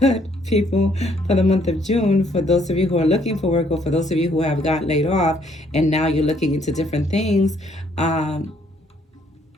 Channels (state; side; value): normal; both; correlation 0.67